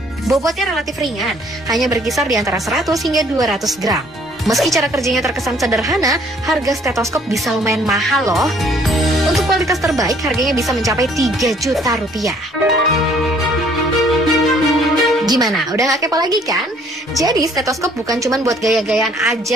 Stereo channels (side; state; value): both; normal; correlation 0.60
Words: Bobotnya relatif ringan, hanya berkisar di antara 100 hingga 200 gram. Meski cara kerjanya terkesan sederhana, harga stetoskop bisa lumayan mahal loh. Untuk kualitas terbaik, harganya bisa mencapai 3 juta rupiah. Gimana? Udah gak kepo lagi kan? Jadi stetoskop bukan cuma buat gaya-gayaan